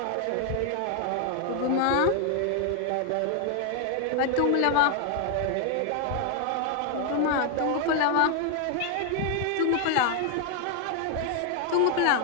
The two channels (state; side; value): different; both; correlation 0.00